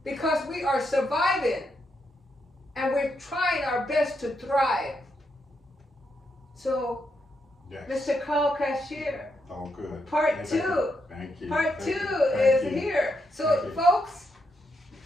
Because we are surviving. And we're trying our best to thrive. So, Yes. Mr. Karl Cashier. Oh, good. Part 2. Thank you. Part 2 Thank is you. here. So, Thank you. folks,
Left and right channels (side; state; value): both; normal; correlation 0.80